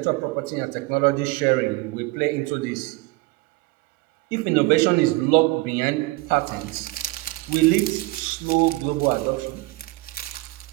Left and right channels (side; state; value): left; quieter; 22.1 dB